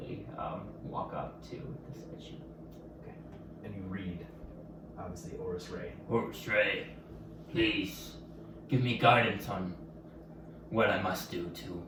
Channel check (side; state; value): both; identical; correlation 1.00